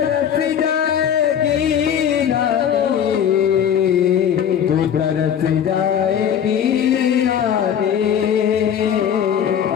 तरस जाएगी आगे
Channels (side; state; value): right; quieter; 8.8 dB